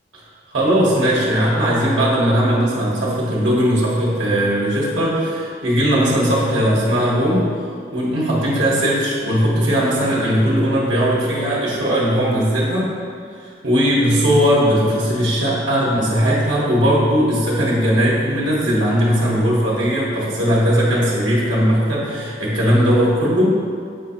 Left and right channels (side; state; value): both; normal; correlation 0.63